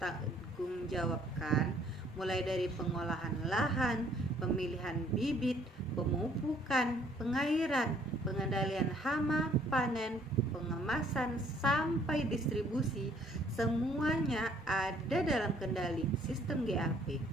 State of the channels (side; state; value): both; normal; correlation 0.62